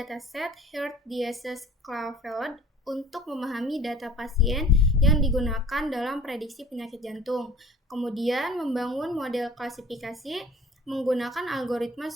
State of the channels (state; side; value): normal; both; correlation 0.48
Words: Heart Disease Claveled untuk memahami data pasien yang digunakan dalam prediksi penyakit jantung. Kemudian membangun model klasifikasi menggunakan algoritma